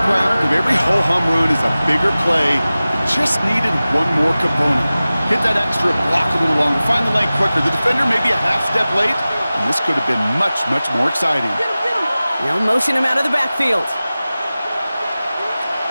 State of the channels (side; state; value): both; inverted; correlation -0.97